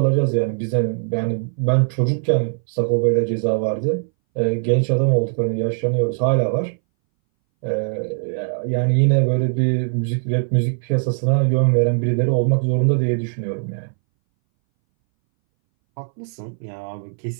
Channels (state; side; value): silent; left; 62 dB below the other